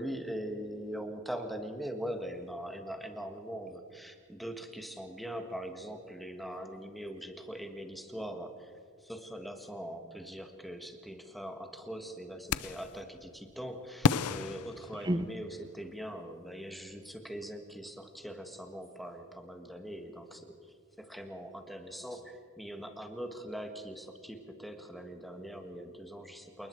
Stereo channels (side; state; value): both; normal; correlation 0.58